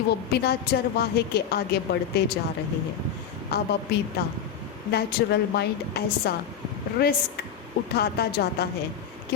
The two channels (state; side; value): quieter; right; 7.9 dB